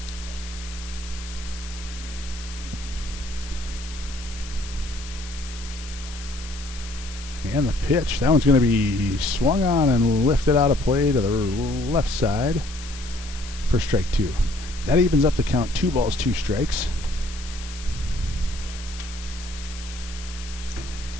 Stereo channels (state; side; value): noise; left; hiss, 14 dB below the sound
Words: And the pitch, that one's going to be swung on and lifted out of play to the left side for strike 2. That evens up the count, 2 balls, 2 strikes.